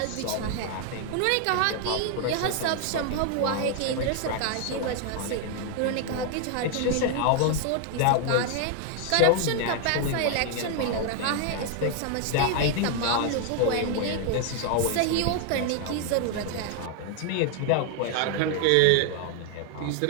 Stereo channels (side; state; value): both; different; correlation 0.00